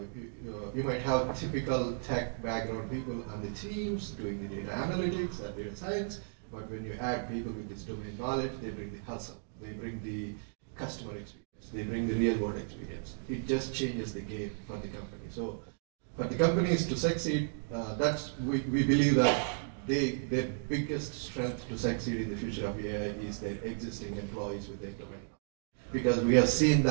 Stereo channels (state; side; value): silent; left; digital silence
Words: you might have typical tech background people on the teams doing the data analytics and data science, but when you add people with this domain knowledge, they bring the hustle, they bring the customer experience, they bring the real world experience. It just changes the game for the company. So for the companies to succeed, we believe that their biggest strength to succeed in the future of AI is their existing employees with their domain. Because we have seen